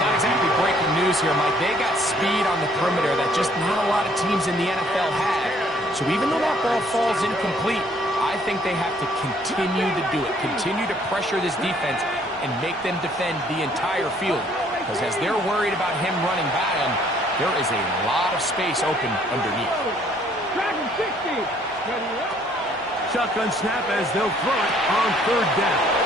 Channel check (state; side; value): normal; both; correlation 0.62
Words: exactly breaking news here, Mike. They got speed on the perimeter that just not a lot of teams in the NFL have. So even though that ball falls incomplete, I think they have to continue to do it. Continue to pressure this defense and make them defend the entire field. Because as they're worried about him running by them, there is a lot of space open underneath. Dragon 60. Ready, Shotgun snap as they'll throw it on third down.